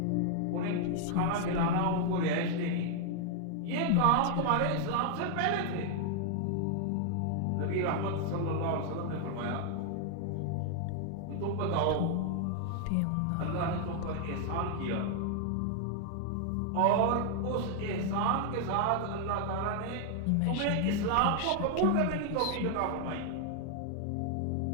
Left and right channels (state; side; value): different; both; correlation 0.00